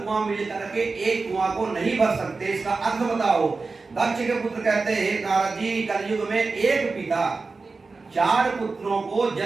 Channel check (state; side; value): quieter; left; 4.0 dB